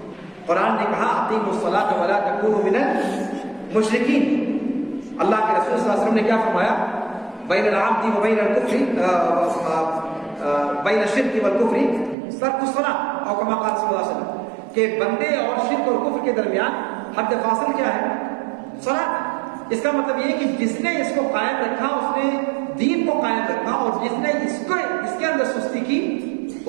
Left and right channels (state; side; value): drops out; left; at 12.2 s